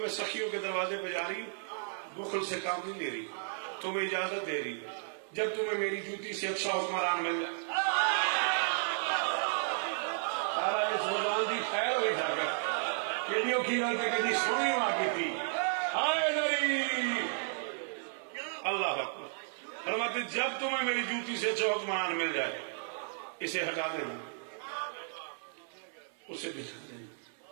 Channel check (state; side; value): silent; left; 55 dB below the other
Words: سخیوں کے دروازے پہ جا رہی ہوں، بخل سے کام نہیں لے رہی، تمہیں اجازت دے رہی جب تمہیں میری جوتی سے اچھا حکمران مل جائے. سارا اس زبان دی خیر ہوئی تھا کر کڈیوں کی غلطی کہ جی سونی واقعی تھی. ہائے دری اللہ اکبر. فرماتے جب تمہیں میری جوتی سے اچھا حکمران مل جائے اسے ہٹا دینا، اسے بھجا دینا.